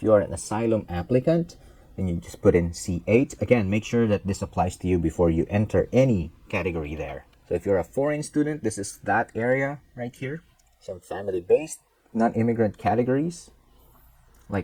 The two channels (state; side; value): identical; both; correlation 1.00